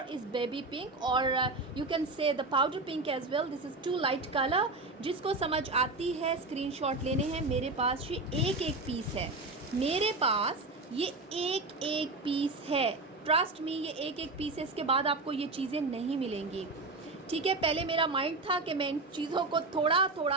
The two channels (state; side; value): quieter; left; 3.3 dB